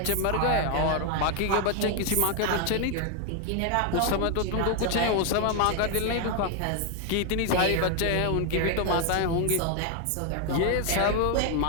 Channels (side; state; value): both; different; correlation 0.01